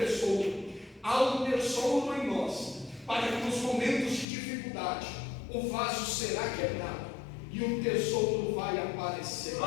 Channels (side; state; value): right; drops out; at 4.2 s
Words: Há um tesouro em nós, para que nos momentos de dificuldade o vaso será quebrado e o tesouro vai aparecer.